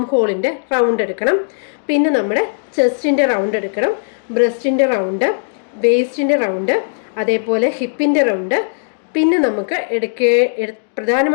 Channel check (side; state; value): right; silent; digital silence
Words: ഹോളിൻ്റെ റൗണ്ട് എടുക്കണം. പിന്നെ നമ്മുടെ ചെസ്റ്റിൻ്റെ റൗണ്ട് എടുക്കണം, ബ്രസ്റ്റിൻ്റെ റൗണ്ട്, വേസ്റ്റിൻ്റെ റൗണ്ട്, അതേപോലെ ഹിപ്പിൻ്റെ റൗണ്ട്. പിന്നെ നമുക്ക്